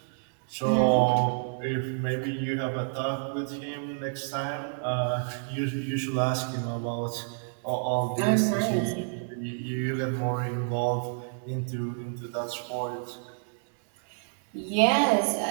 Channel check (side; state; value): left; silent; digital silence